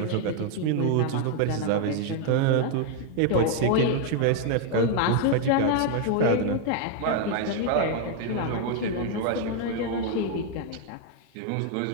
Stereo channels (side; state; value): both; different; correlation 0.00